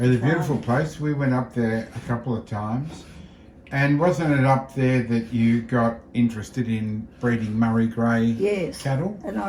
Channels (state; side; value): identical; both; correlation 1.00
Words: the a farm. beautiful place. We went up there a couple of times. And wasn't it up there that you got interested in breeding Murray Grey Yes. cattle? And